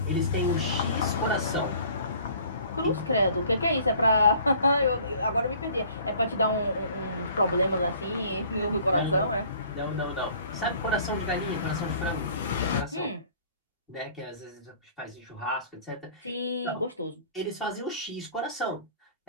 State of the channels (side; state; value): both; inverted; correlation -0.52